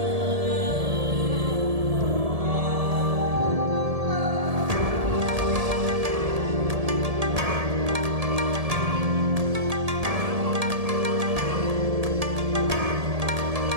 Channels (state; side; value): late; left; 1.7 ms